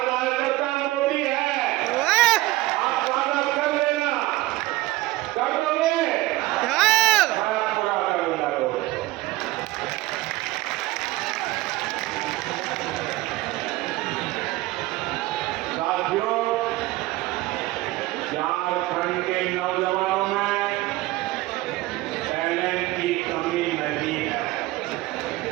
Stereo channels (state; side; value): quieter; left; 18.4 dB